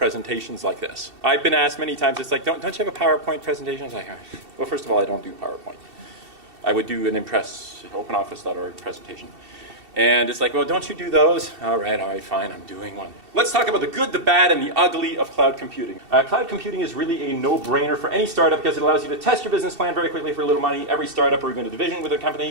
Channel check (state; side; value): late; left; 2.7 ms